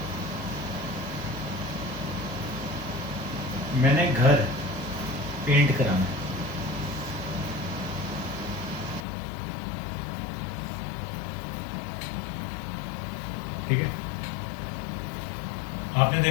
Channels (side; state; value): right; drops out; at 9.1 s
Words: मैंने घर पेंट कराना है, ठीक है। आपने